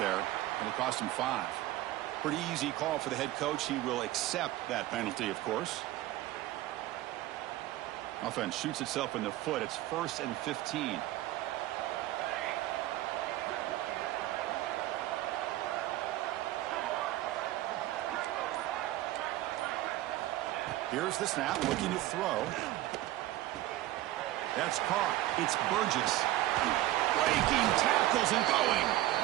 It'll cost him 5. Pretty easy call for the head coach. He will accept that penalty, of course. Offense shoots itself in the foot. It's 1st and 15. Here's the snap, looking to throw. That's caught. It's Burgess. Breaking tackles and going.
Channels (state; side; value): quieter; left; 15.6 dB